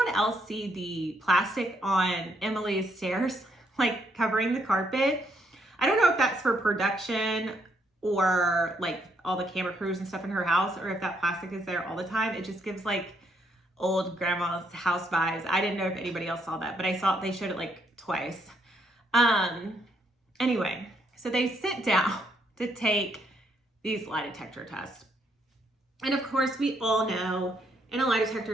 else see the plastic on Emily's stairs, like covering the carpet? I don't know if that's for production or like all the camera crews and stuff in her house, or if that plastic is there all the time. It just gives like old grandma's house vibes. I didn't know if anybody else saw that, but I saw they showed it like twice. Anyway, so they sit down to take these lie detector tests. And of course, we all know in a lie detector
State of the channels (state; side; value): normal; both; correlation 0.73